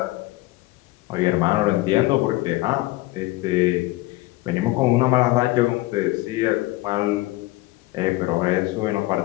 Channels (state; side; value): quieter; right; 19.3 dB